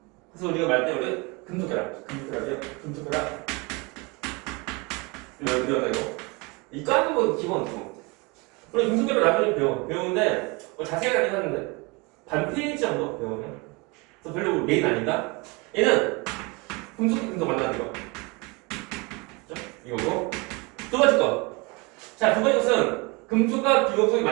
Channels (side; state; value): left; quieter; 27.5 dB